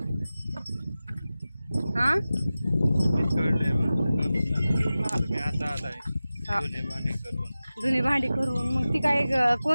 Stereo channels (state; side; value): inverted; both; correlation -0.96